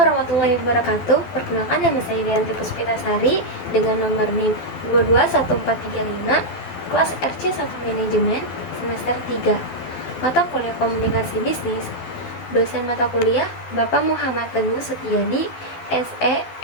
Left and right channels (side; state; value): right; late; 12 ms